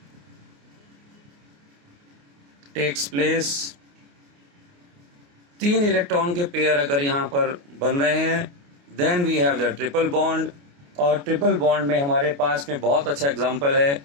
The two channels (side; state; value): left; late; 28 ms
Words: takes place. 3 electron के पेयर अगर यहाँ पर बन रहे हैं then we have the triple bond. और ट्रिपल बॉन्ड में हमारे पास में बहुत अच्छा एग्जांपल है